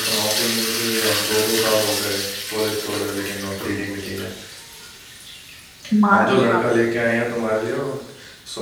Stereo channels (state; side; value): identical; both; correlation 1.00